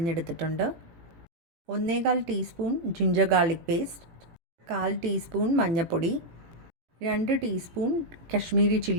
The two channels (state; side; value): late; left; 18 ms